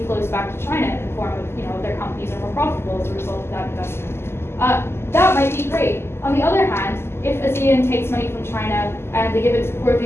flows back to China in the form of, their companies are more profitable as a result of that investment. That might be great. On the other hand, if ASEAN takes money from China and they give it to poor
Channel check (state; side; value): late; right; 0.12 ms